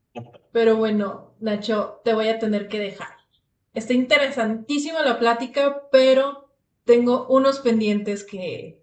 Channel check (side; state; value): both; identical; correlation 1.00